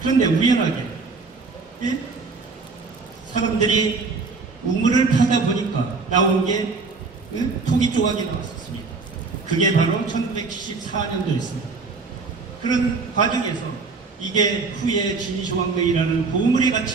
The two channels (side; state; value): left; quieter; 4.2 dB